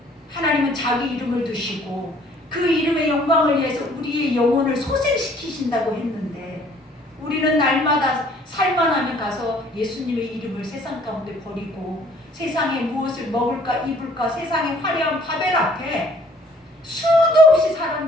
하나님은 자기 이름을 두시고 그 이름의 영광을 위해서 우리의 영혼을 소생시키신다고 했는데 우리는 날마다 살만하면 가서 예수님의 이름을 세상 가운데 버리고 세상에 무엇을 먹을까 입을까 세상의 화려한 바벨 앞에 수도 없이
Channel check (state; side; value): normal; both; correlation 0.58